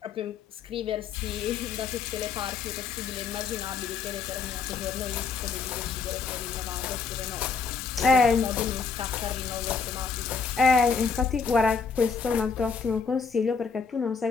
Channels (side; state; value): right; quieter; 5.3 dB